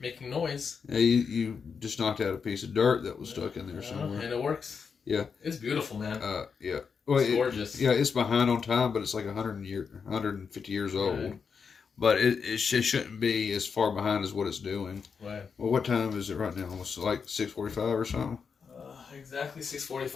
noise. Yeah, you just knocked out a piece of dirt that was stuck in there somewhere. And it works. Yeah. It's beautiful, man. Yeah. Well, it's gorgeous. Yeah, it's behind on time, but it's like 150 years old. Right. But it shouldn't be as far behind as what it's doing. Right. Well, what time is it right now? Almost like 6:45 or something? Exactly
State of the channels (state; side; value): quieter; right; 5.9 dB